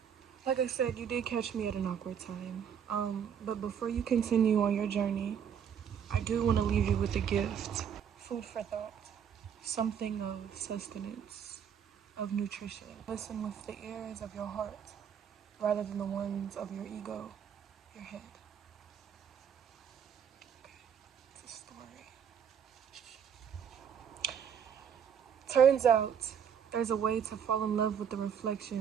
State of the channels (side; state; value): left; quieter; 8.0 dB